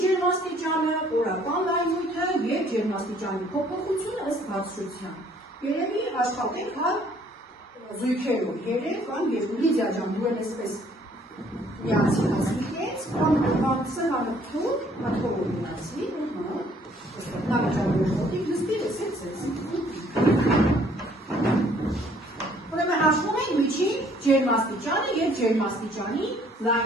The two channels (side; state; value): both; normal; correlation 0.61